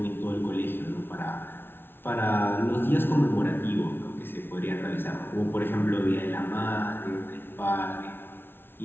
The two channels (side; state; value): right; late; 0.11 ms